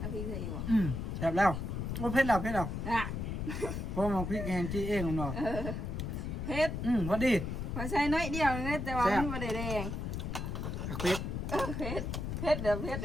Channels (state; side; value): noise; left; rumble, 3 dB below the sound